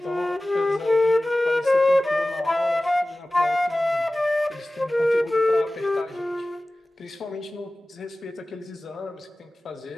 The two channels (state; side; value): normal; both; correlation 0.97